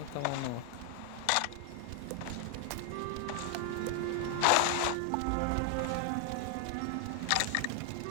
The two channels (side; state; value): both; different; correlation 0.00